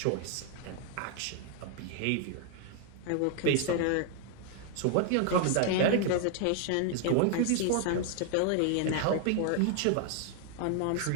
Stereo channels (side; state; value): both; different; correlation 0.00